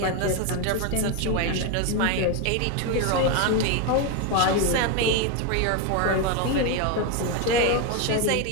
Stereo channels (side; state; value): both; different; correlation 0.02